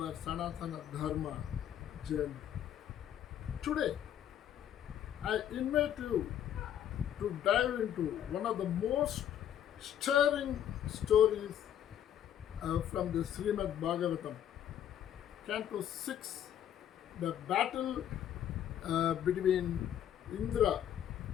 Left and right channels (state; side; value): quieter; right; 10.3 dB